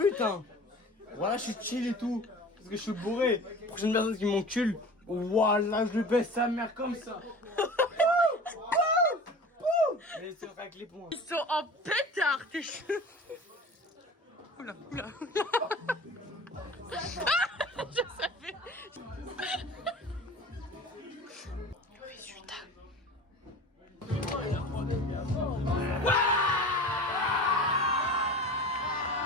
hein. Voilà, je suis chill et tout. Parce que je suis bourré. Prochaine personne qui m'encule, voilà, je baisse sa mère comme ça. Mais c'est vrai que les ponts. Ils sont en pétard, tes cheveux. Oula, oula, oula. Je savais. Résultat.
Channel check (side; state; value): both; normal; correlation 0.38